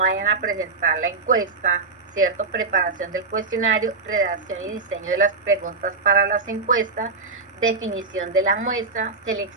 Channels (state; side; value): quieter; left; 4.2 dB